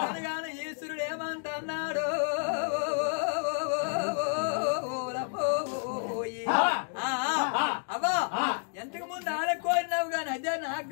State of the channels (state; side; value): silent; right; digital silence